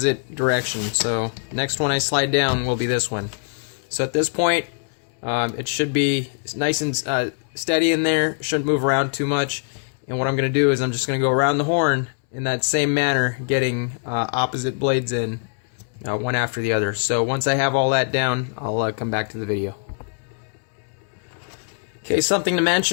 direction. So next one I slide down will be this one. So at this point, it should be nice and steady in there, shouldn't move around too much. And what I'm going to do is I'm just going to go around the horn in that same manner, getting opposite blades in, one after the other. So once I have all that down, I'll come back to the video. Okay, something to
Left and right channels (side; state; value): right; silent; 64 dB below the other